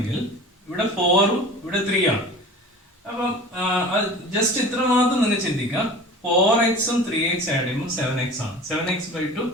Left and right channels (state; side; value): normal; both; correlation 0.39